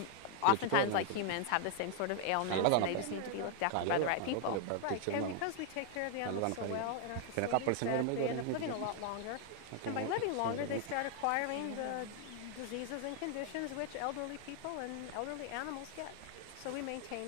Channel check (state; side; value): different; both; correlation 0.00